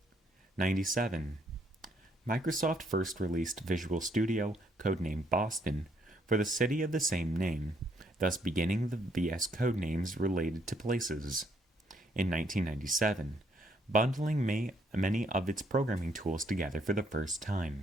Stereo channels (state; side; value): normal; both; correlation 0.70